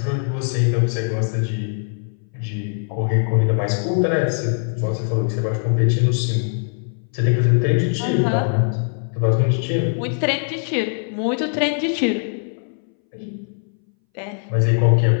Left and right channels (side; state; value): right; silent; 62 dB below the other